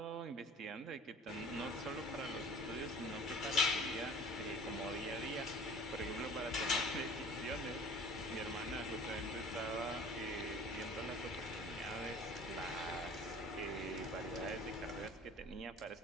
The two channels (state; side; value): normal; both; correlation 0.47